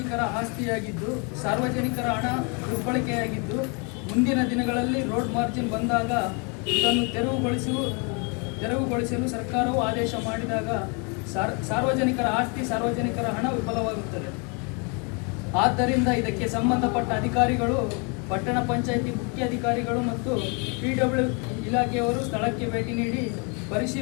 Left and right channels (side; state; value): right; quieter; 34.0 dB